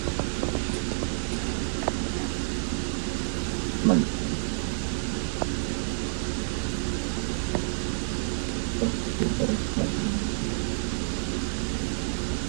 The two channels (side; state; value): left; silent; 59 dB below the other